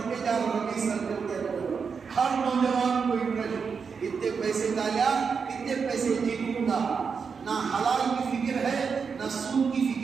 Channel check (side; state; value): left; quieter; 5.8 dB